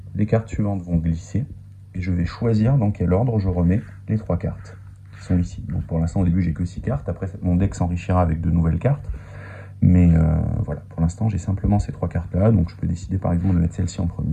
Les cartes suivantes vont glisser. Et je vais choisir dans quel ordre je remets les 3 cartes qui sont ici. Donc pour l'instant, au début, j'ai que 6 cartes. Après, mon deck s'enrichira avec de nouvelles cartes. Mais voilà, pour l'instant, j'ai simplement ces 3 cartes-là. Donc je peux décider par exemple de mettre celle-ci en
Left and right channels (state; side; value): identical; both; correlation 1.00